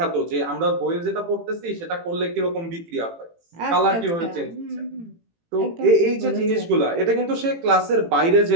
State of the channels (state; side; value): late; left; 18 ms